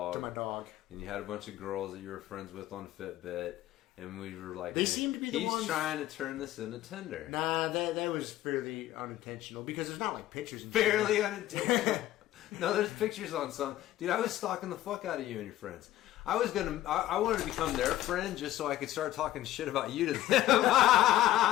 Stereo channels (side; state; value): right; quieter; 14.4 dB